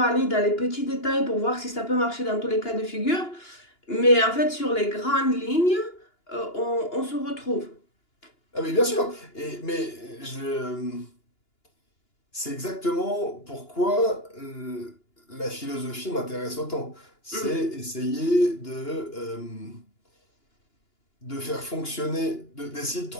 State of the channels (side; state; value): right; late; 2.9 ms